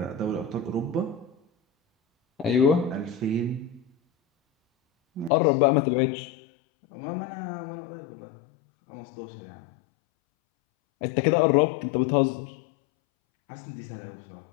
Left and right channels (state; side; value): drops out; right; at 5.3 s